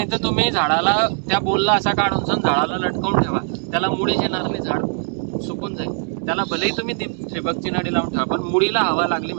तर तुम्ही झाडाला त्या पोलला असा काढून झाडाला लटकवून ठेवा, त्याला मुळीच येणार नाही, झाड सुकून जाईल. त्याला भलेही तुम्ही ठिबकची नळी लावून ठेवा, पण मुळीला हवा लागली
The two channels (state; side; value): silent; left; 59 dB below the other